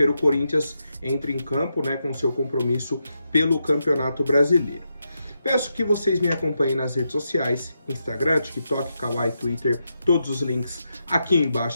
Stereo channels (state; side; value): inverted; both; correlation -0.85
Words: o Corinthians entra em campo, né, com seu compromisso pelo Campeonato Brasileiro. Peço que vocês me acompanhem nas redes sociais, Instagram, TikTok, Kawaii, Twitter, todos os links aqui